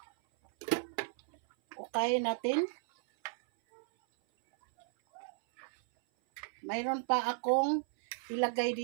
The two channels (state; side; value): silent; left; 55 dB below the other